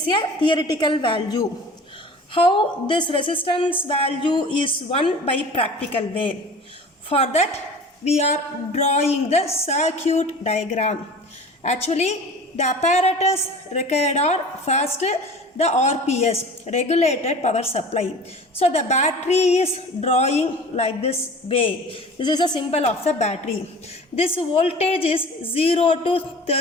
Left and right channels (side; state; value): both; normal; correlation 0.40